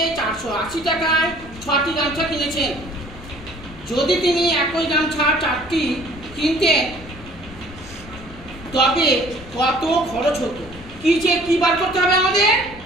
480 টাকায় 6টি গামছা কিনেছেন। যদি তিনি একই গামছা 4টি কিনতেন তবে কত খরচ হতো? কি বার করতে হবে আমাদের?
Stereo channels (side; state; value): left; noise; rumble, 17 dB below the sound